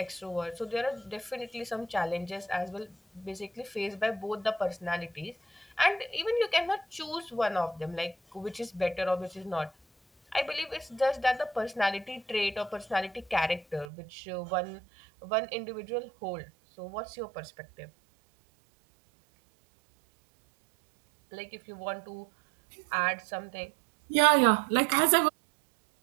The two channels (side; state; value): left; drops out; at 13.9 s